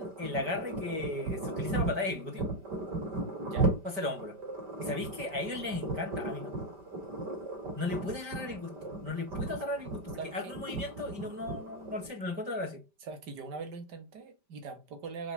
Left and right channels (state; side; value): late; left; 5.1 ms